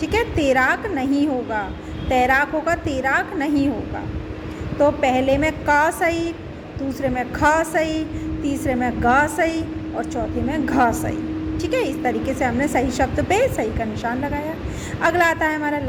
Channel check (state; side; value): identical; both; correlation 1.00